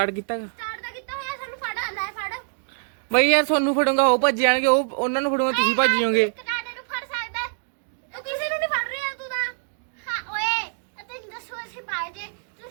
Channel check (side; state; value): left; silent; digital silence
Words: ਕੀਤਾ ਹੋਇਆ, ਸਾਨੂੰ ਫੜ ਲੈ ਫੜ ਬਈ ਯਾਰ। ਤੁਹਾਨੂੰ ਫੜੂੰਗਾ ਉਹ ਭੱਜ ਜਾਣਗੇ, ਉਹ ਉਹਨਾਂ ਨੂੰ ਫੜੂੰਗਾ ਤੁਸੀਂ ਭੱਜ ਜਾਓਗੇ।